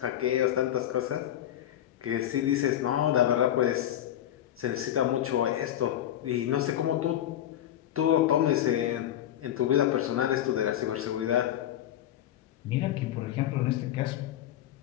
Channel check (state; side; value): quieter; right; 11.7 dB